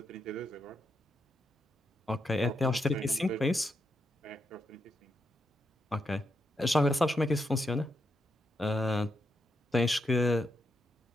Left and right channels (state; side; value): normal; both; correlation 0.82